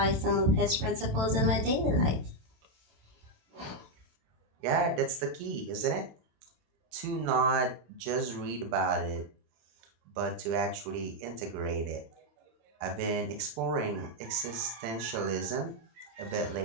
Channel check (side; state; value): left; late; 27 ms